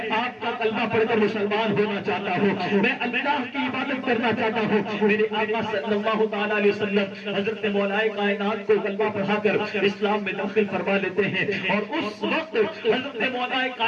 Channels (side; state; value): both; identical; correlation 1.00